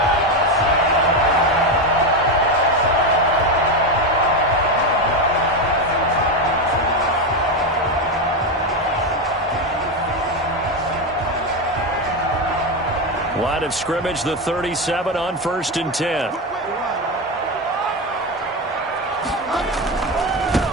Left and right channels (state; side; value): normal; both; correlation 0.12